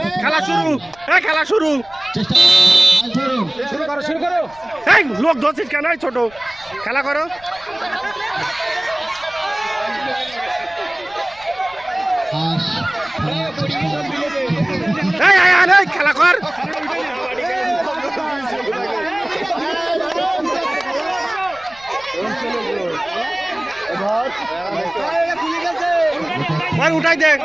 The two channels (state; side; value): noise; left; rumble, 26 dB below the sound